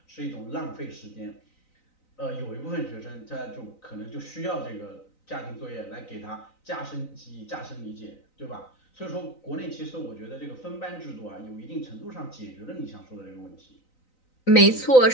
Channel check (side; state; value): right; late; 3.9 ms